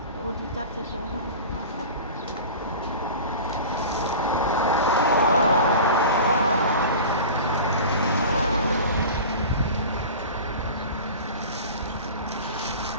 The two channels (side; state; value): both; inverted; correlation -0.35